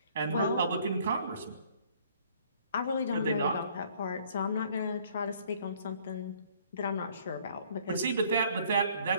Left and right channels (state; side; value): inverted; both; correlation -0.59